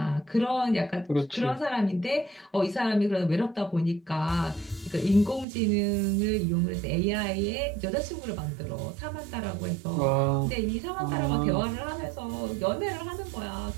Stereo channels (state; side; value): drops out; left; at 5.5 s